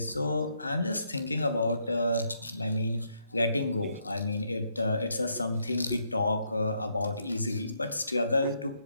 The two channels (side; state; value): both; inverted; correlation -0.75